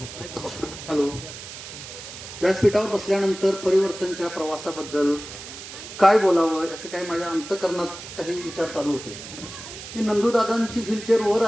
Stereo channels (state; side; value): noise; right; hiss, 12 dB below the sound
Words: हॅलो व्यासपीठावर बसल्यानंतर परिवर्तनच्या प्रवासाबद्दल काय बोलावं याचे काही माझ्या अंतःकरणात काही विचार चालू होते की नंदूदादांची व्हीलचेअर वर